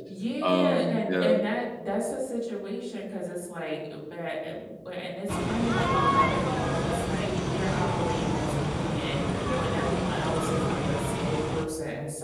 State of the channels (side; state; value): both; identical; correlation 1.00